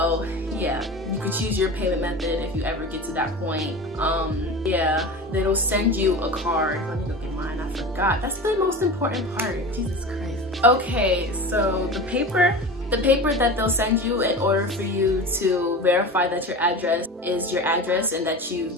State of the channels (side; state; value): both; normal; correlation 0.31